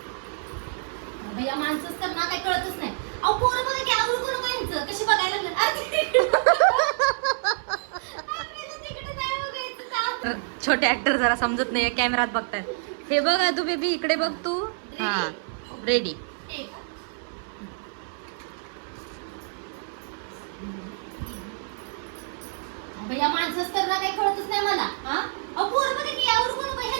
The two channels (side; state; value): left; silent; 59 dB below the other